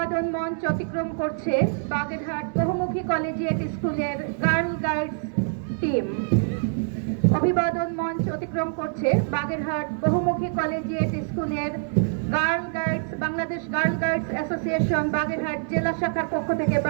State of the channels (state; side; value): silent; left; digital silence